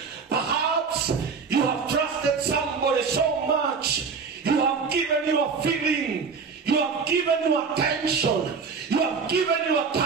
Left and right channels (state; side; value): quieter; left; 5.4 dB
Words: Perhaps you have trusted somebody so much. You have given your feeling. You have given your attention. You have given your